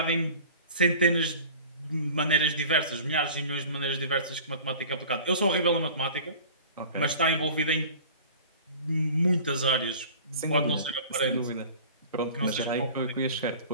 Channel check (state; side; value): inverted; both; correlation -0.42